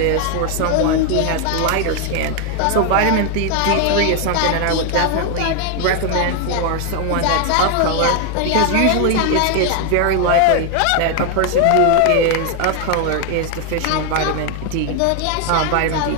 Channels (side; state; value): both; different; correlation 0.01